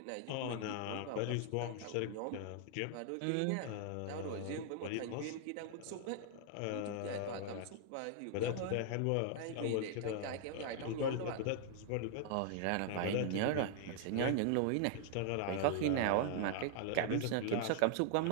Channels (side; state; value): both; different; correlation 0.00